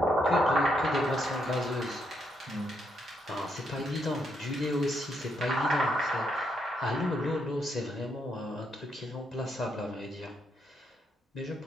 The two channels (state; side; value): normal; both; correlation 0.77